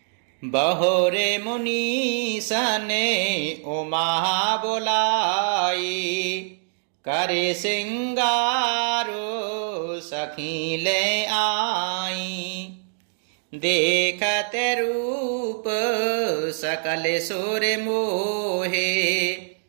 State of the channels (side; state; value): left; silent; digital silence